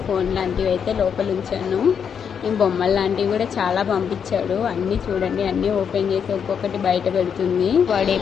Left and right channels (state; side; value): quieter; right; 7.3 dB